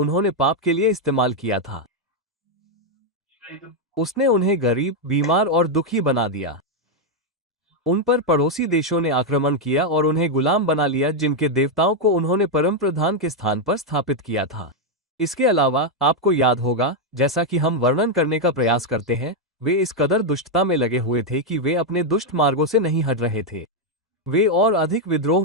पाप के लिए इस्तेमाल किया था। उसने उन्हें गरीब, बीमार और दुखी बना दिया। उन पर पड़ोसी देशों ने आक्रमण किया और उन्हें गुलाम बना लिया जिनके देवताओं को उन्होंने परम प्रधान के स्थान पर स्थापित किया था। इसके अलावा आपको याद होगा, जैसा कि हम वर्णन करने का प्रयास करते हैं, वे इस कदर दुष्टता में लगे हुए थे कि वे अपने दुष्ट मार्गों से नहीं हट रहे थे। वे और अधिक विद्रोह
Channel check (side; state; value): both; normal; correlation 0.01